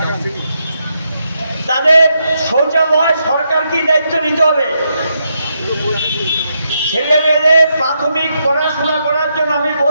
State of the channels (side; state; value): both; inverted; correlation -0.81